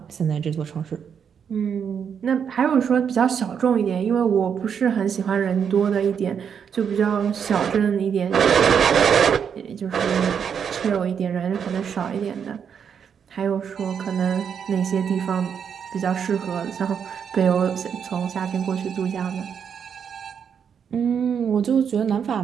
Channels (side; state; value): left; quieter; 7.4 dB